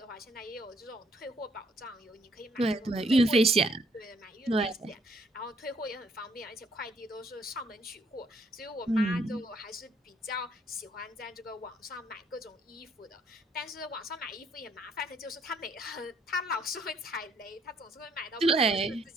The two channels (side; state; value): both; normal; correlation 0.67